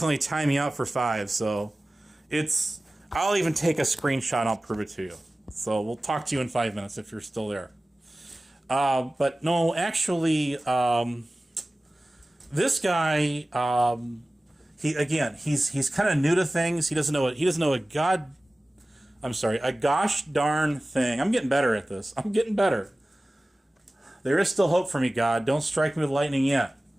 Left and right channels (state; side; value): normal; both; correlation 0.97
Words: only time me out for 5, so I'll even take a screenshot and I'll prove it to you. So we'll talk to you in 5 minutes if you're still there. But no, actually, this guy, he's kind of new to things. He doesn't know a gosh darn thing. I'm getting better at this. I'm getting better. There is still hope for me, God. Don't strike me with lightning yet.